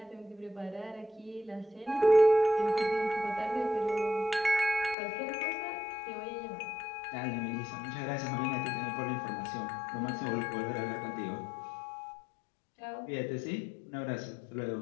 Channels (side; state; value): right; drops out; at 5.0 s